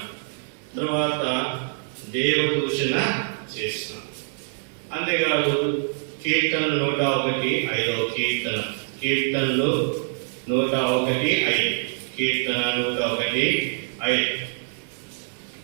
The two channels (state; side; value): silent; left; digital silence